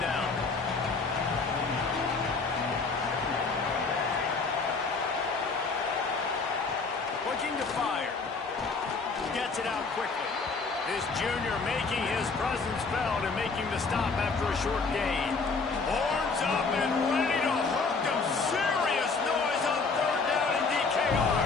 down. Looking to fire. Gets it out quickly. This junior making his presence felt and making the stop after a short gain. Horns up and ready to hook them. Serious noise on 3rd down in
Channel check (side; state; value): right; quieter; 4.4 dB